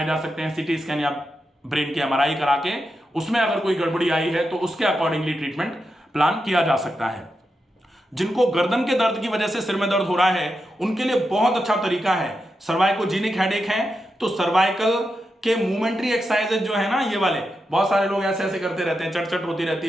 जा सकते हैं, CT स्कैन या ब्रेन के MRI करा के, उसमें अगर कोई गड़बड़ी आई है तो उसके अकॉर्डिंगली ट्रीटमेंट प्लान किया जा सकता है। जिनको गर्दन के दर्द की वजह से सिर में दर्द हो रहा है उनके लिए बहुत अच्छा तरीका है, सर्वाइकोजेनिक हेडेक है तो सर्वाइकल के मूवमेंट्री एक्सरसाइजेज जो है ना, ये वाले बहुत सारे लोग ऐसे ऐसे करते रहते हैं, चट होती रहती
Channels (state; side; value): normal; both; correlation 0.87